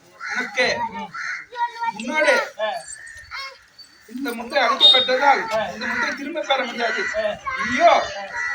உனக்கு முன்னாடி இந்த முத்தை அளிக்கப்பட்டதால் இந்த முத்தை திரும்ப பெற முடியாது. ஐயோ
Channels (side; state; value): both; identical; correlation 1.00